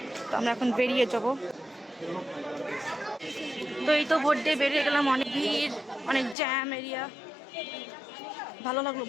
তো আমরা এখন বেরিয়ে যাব। তো এই তো ভোট দিয়ে বেরিয়ে গেলাম, অনেক ভিড়, অনেক জ্যাম এরিয়া। ভালো লাগলো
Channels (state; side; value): drops out; right; at 6.4 s